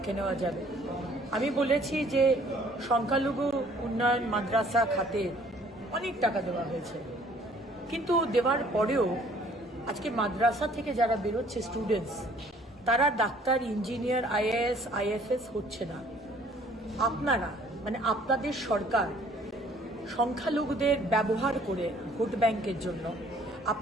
নেওয়া যাবে। আমি বলেছি যে সংখ্যালঘু উন্নয়ন মাদ্রাসা খাতে অনেক টাকা দেওয়া হয়েছে, কিন্তু দেওয়ার পরেও আজকে মাদ্রাসা থেকে যারা বেরোচ্ছে স্টুডেন্টস, তারা ডাক্তার, ইঞ্জিনিয়ার, আইএএস, আইএফএস হচ্ছে না। আপনারা মানে আপনাদের সরকার সংখ্যালঘুদের ব্যবহার করে ভোট ব্যাংকের জন্য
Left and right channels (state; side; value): normal; both; correlation 0.58